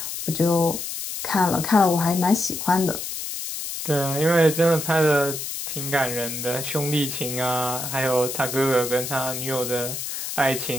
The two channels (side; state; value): left; noise; hiss, 6 dB below the sound